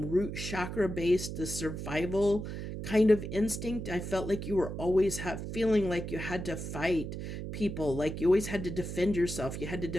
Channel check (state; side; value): noise; right; hum, 6 dB below the sound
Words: chakra based, the survival kind of instinct. I felt like you were always feeling like you had to fight people, like you always had to defend yourself, you had to